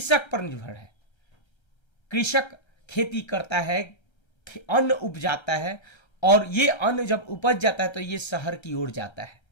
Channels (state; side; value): late; right; 1.3 ms